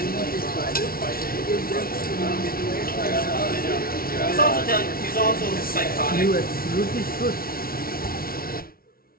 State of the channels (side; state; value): right; late; 0.43 ms